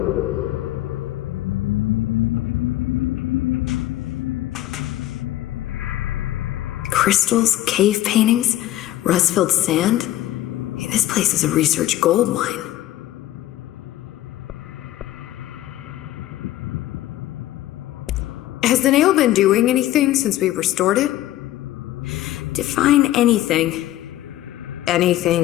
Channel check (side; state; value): right; quieter; 14.5 dB